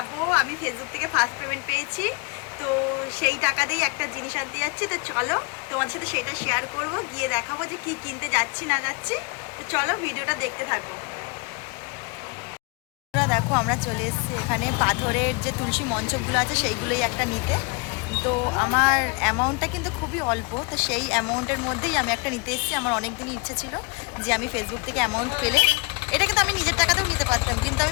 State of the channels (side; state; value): right; quieter; 30.2 dB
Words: আমি ফেসবুক থেকে ফার্স্ট পেমেন্ট পেয়েছি, তো সেই টাকা দিয়েই একটা জিনিস আনতে যাচ্ছি। তো চলো তোমাদের সাথে সেটা শেয়ার করব, গিয়ে দেখাবো যে কি কিনতে যাচ্ছি না যাচ্ছি। তো চলো ভিডিওটা দেখতে থাকো। দেখো আমরা চলে এসেছি এখানে পাথরের যে তুলসী মঞ্চপগুলো আছে সেইগুলোই একটা নিতে। তো আমার অ্যামাউন্টটা কিন্তু খুবই অল্প, তো সেই অ্যামাউন্টের মধ্যেই আমি একটা নিতে এসেছি। আমার অনেক দিনই ইচ্ছে ছিল যে আমি ফেসবুক থেকে অ্যামাউন্ট পেলে, এটা কিন্তু আমি নিজের টাকাতেও নিতে পারতাম, কিন্তু